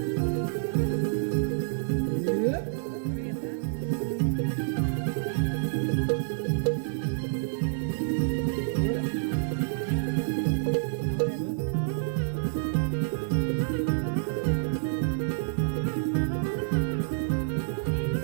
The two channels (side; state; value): left; silent; 59 dB below the other